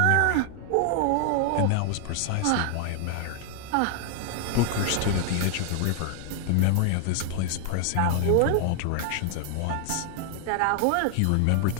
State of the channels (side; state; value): both; different; correlation 0.00